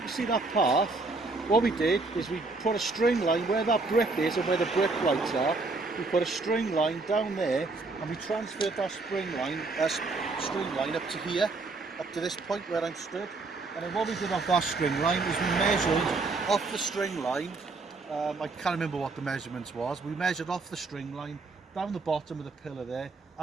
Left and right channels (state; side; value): quieter; left; 3.6 dB